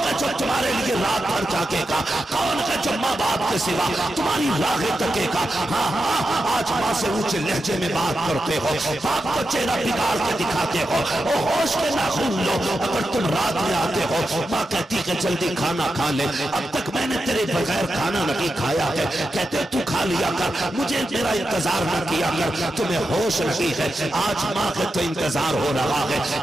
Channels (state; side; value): normal; both; correlation 0.89